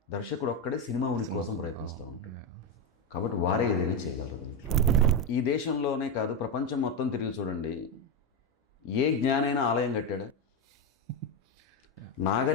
దర్శకుడు ఒక్కడే సినిమా ఉనికి కోసం ప్రయత్నిస్తూ ఉంటాడు. కాబట్టి వారే ఏదైనా చేయగలరు దీంట్లో. ఈ దేశంలోనే కాదు ప్రపంచం మొత్తం తిరిగి చూడండి, ఏ జ్ఞానైనా ఆలయం కట్టాడా?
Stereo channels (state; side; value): normal; both; correlation 0.10